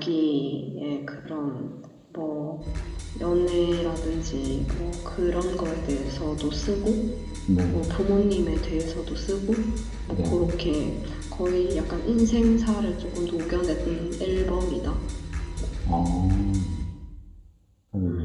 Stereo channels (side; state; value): both; identical; correlation 1.00